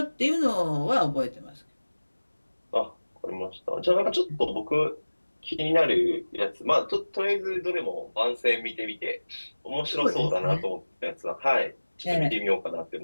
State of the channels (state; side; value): inverted; both; correlation -1.00